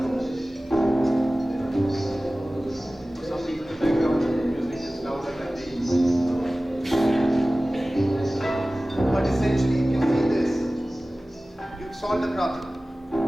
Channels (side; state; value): both; normal; correlation 0.97